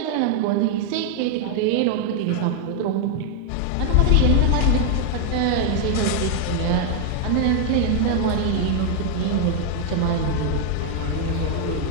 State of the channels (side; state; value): both; different; correlation 0.00